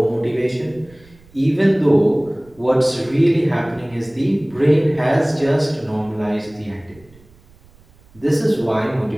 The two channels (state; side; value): noise; right; rumble, 27 dB below the sound